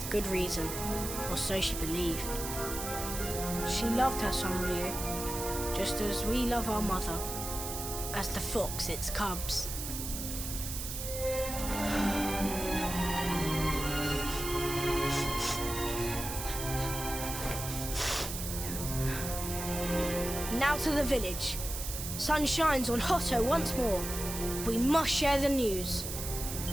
good reason, or so she believed. She loved her son Ryu, just as we love our mother, as the fox its cubs. Now to the village. Sun shines on Hotto once more. We must share the news.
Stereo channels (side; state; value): right; noise; hiss, 6 dB below the sound